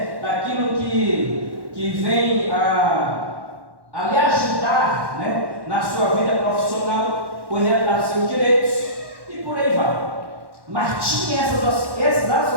daquilo que vem a lhe ajudar, na sua vida profissional, correr atrás dos seus direitos e por aí vai. Mas tinha essas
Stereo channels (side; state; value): left; late; 1.1 ms